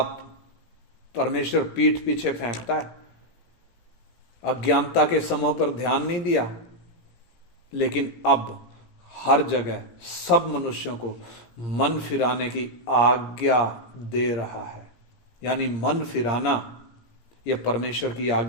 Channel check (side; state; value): right; late; 17 ms